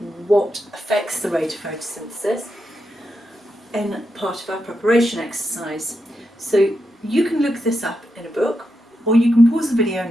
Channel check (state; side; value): normal; both; correlation 0.85